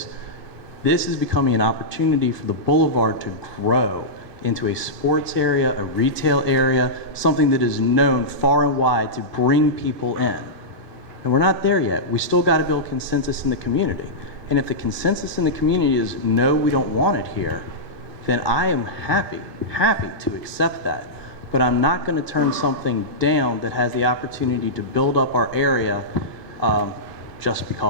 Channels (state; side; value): late; left; 2.6 ms